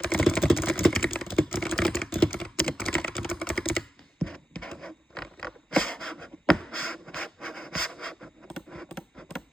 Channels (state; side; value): normal; both; correlation 0.88